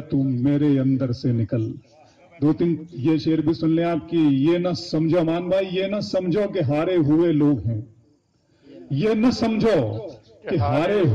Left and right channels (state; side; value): identical; both; correlation 1.00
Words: तू मेरे अंदर से निकल। दो तीन ये शेर भी सुन लें आपकी। ये न समझो मान भाई, ये न समझो कि हारे हुए लोग हैं, ये न समझो कि हारे